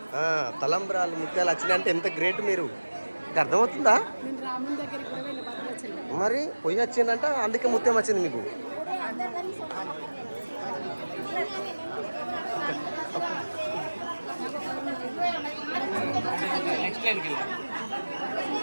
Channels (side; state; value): both; inverted; correlation -1.00